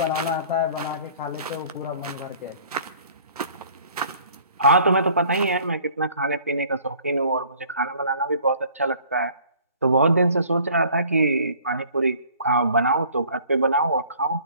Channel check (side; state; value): both; inverted; correlation -0.53